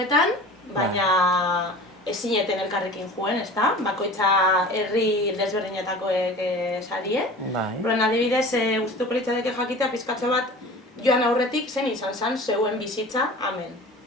baina ez zineten elkarrekin joen, ezta? Bakoitza herri desberdinetakoek sarie. Horren adibidez, gustatuko litzateke jakitea pizkatxo bat joan aurretik zen izan zen zeuen bizitza hemen,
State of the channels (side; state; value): both; normal; correlation 0.40